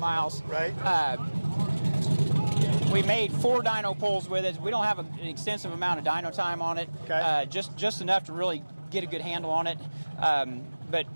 Right. We made 4 dyno pulls with it. We don't have an extensive amount of dyno time on it. Okay. Just enough to really get a good handle on it. But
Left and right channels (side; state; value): both; inverted; correlation -1.00